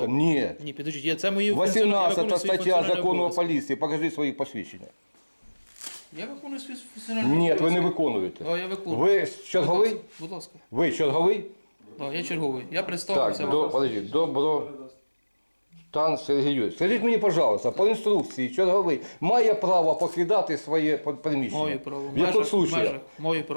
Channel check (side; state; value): both; inverted; correlation -1.00